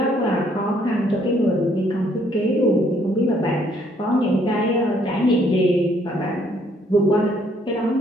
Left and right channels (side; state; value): both; normal; correlation 0.66